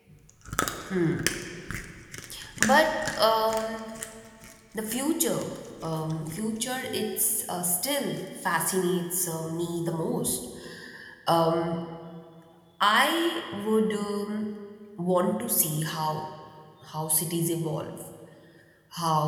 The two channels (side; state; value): both; identical; correlation 1.00